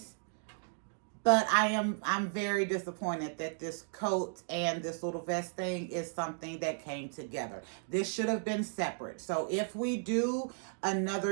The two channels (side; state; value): left; silent; digital silence